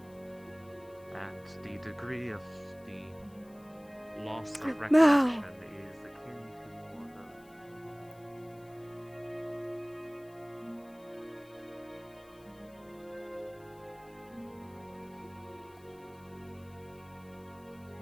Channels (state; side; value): noise; left; hiss, 27 dB below the sound